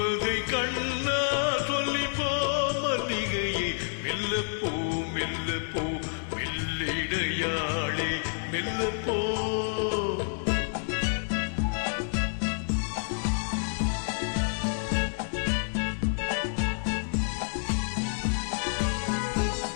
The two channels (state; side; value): silent; right; digital silence